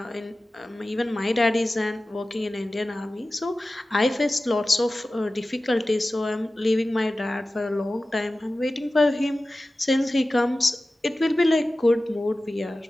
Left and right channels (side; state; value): both; normal; correlation 0.96